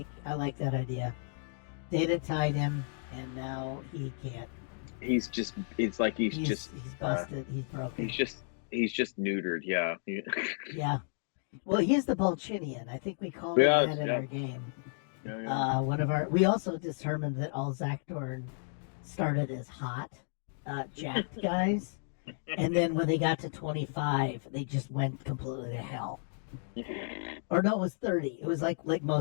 like that idea. Data tied him, and now he can't. He's busted. He's broken. He's just neutered. Yeah. Yeah. Well, he's the Bolchinian. I think we called him that in our game. Yeah. We also determined that all Zakdorn started as hot, jacked guys, and then when they got to 25, they just went completely to hell. Or no, it was 30. It was like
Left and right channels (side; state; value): right; silent; digital silence